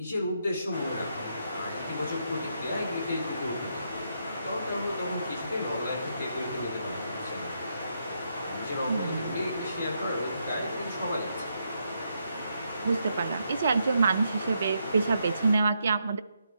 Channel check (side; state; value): both; inverted; correlation -0.80